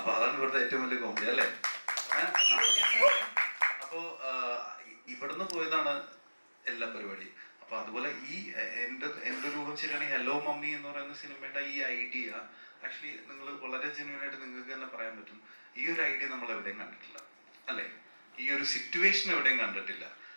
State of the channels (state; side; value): inverted; both; correlation -1.00